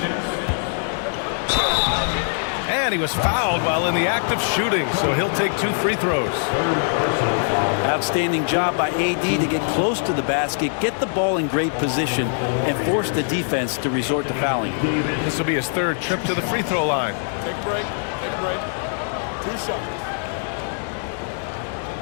And he was fouled while in the act of shooting, so he'll take 2 free throws. Outstanding job by AD to get close to the basket, get the ball in great position, and force the defense to resort to fouling. This will be his 3rd trip to the free throw line. Take a break. Take a break. 2 shots.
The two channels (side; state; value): right; silent; digital silence